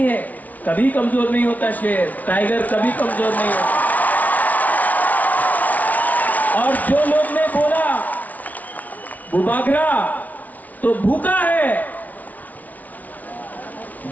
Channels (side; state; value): right; late; 0.074 ms